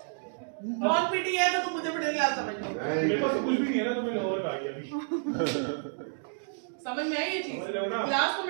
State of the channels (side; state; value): left; silent; digital silence